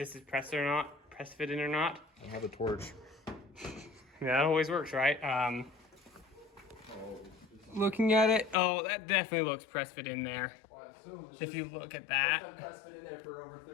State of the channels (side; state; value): right; drops out; at 8.6 s